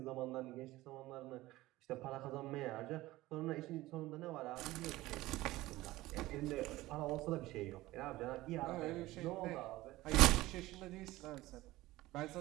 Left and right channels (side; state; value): left; quieter; 17.9 dB